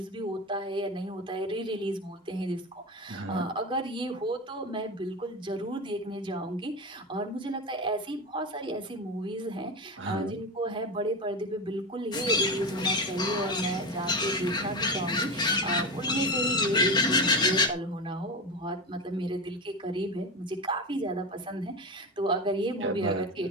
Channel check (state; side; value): normal; both; correlation 0.21